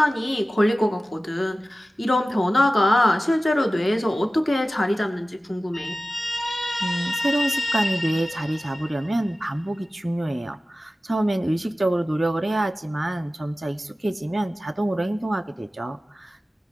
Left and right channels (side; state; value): both; normal; correlation 0.96